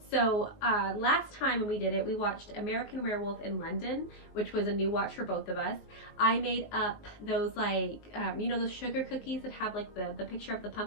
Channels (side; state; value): right; late; 19 ms